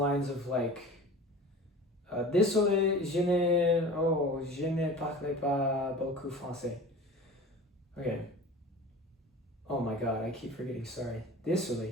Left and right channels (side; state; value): both; normal; correlation 0.38